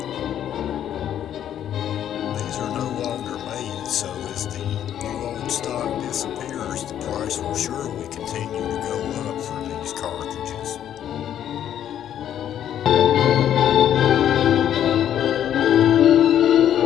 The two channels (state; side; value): quieter; right; 10.4 dB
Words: These are no longer made, so as the new old stock disappears, the price will surely continue to go up for these cartridges.